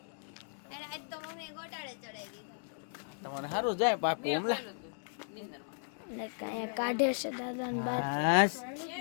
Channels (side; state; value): right; silent; digital silence